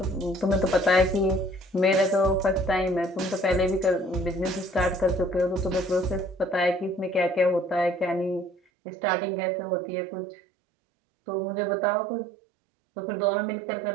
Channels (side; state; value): left; drops out; at 8.6 s